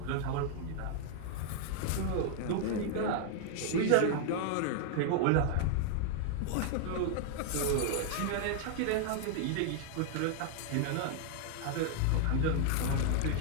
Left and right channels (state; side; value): different; both; correlation -0.01